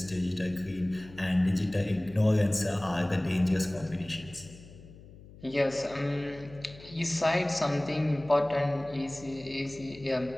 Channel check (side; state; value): left; noise; hum, 19 dB below the sound